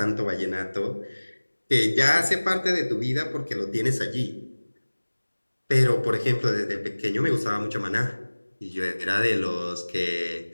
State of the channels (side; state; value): both; inverted; correlation -1.00